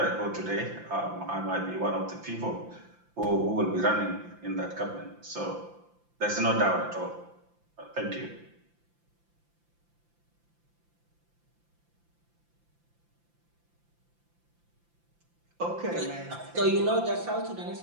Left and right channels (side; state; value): left; late; 5.8 ms